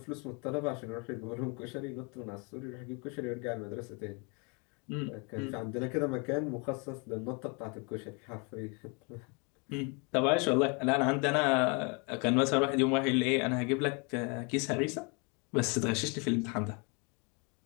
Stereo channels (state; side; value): quieter; right; 33.0 dB